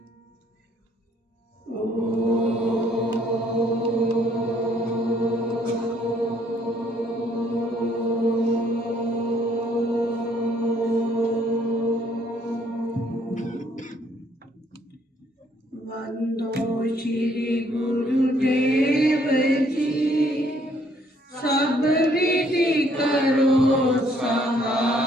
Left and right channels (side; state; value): both; normal; correlation 0.65